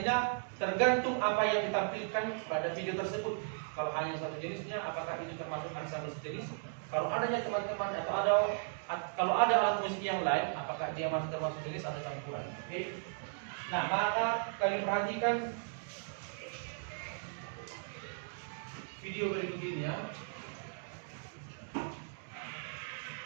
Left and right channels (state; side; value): silent; left; digital silence